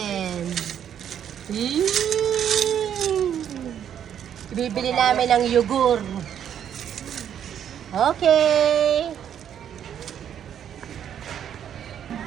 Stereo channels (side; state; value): left; quieter; 9.3 dB